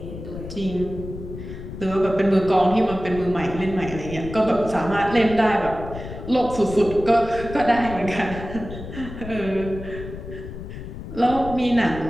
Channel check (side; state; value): left; noise; rumble, 10 dB below the sound